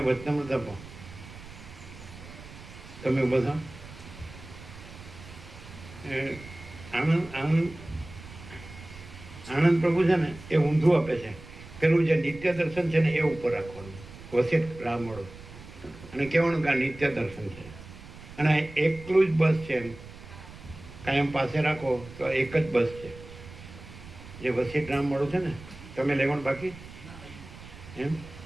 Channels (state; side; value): noise; right; rumble, 16 dB below the sound